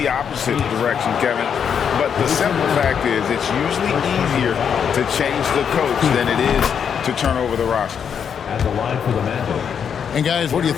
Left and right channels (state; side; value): quieter; right; 7.5 dB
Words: opposite direction, Kevin. But the simple fact is it's usually easier to change the coach than it is to turn over the roster. At the line for the Magic. And guys, what do you